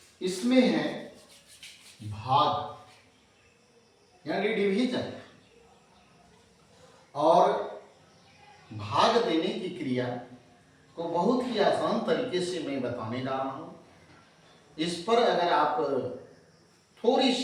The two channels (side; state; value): both; identical; correlation 1.00